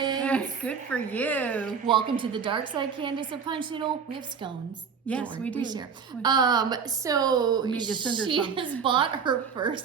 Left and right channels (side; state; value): left; quieter; 6.3 dB